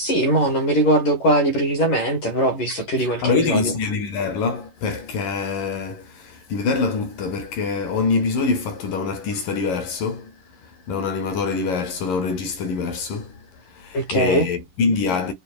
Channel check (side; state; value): right; late; 11 ms